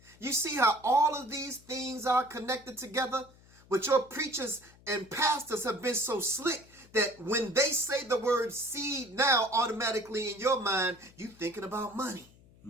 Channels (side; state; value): left; noise; hum, 26 dB below the sound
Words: You see how all of these things are connected together? But your preachers and pastors have been so slick that when they say the word seed now, automatically in your mind, you thinking about money.